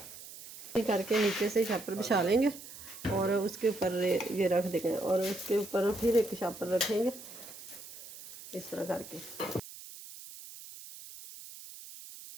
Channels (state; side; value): noise; right; hiss, 15 dB below the sound